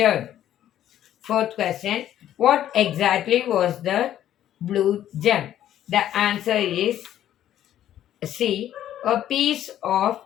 Fourth question: what exactly was the blue gem? The answer is C, a piece of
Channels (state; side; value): quieter; right; 11.7 dB